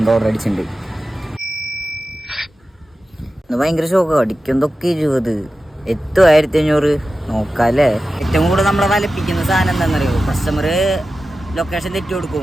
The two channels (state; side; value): normal; both; correlation 0.93